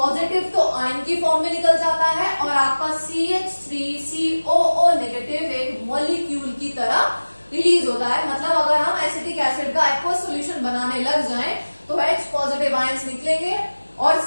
तो आयन की फॉर्म में निकल जाता है और आपका CH3COO नेगेटिव एक मॉलिक्यूल की तरह रिलीज होता है। मतलब अगर हम एसिटिक एसिड का एक्वस सॉल्यूशन बनाने लग जाएं तो H पॉजिटिव आयंस निकलेंगे और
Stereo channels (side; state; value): both; inverted; correlation -1.00